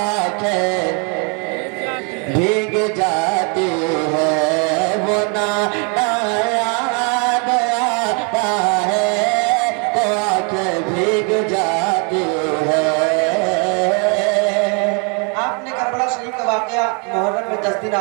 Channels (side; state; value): left; quieter; 35.9 dB